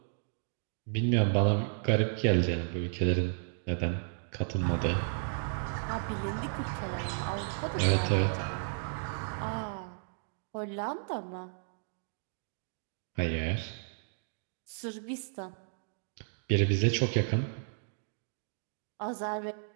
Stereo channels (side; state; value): left; silent; digital silence